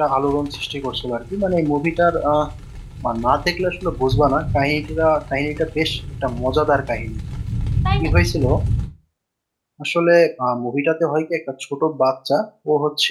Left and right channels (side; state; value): both; identical; correlation 1.00